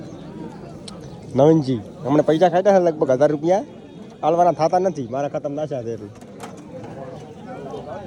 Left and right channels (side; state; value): both; identical; correlation 1.00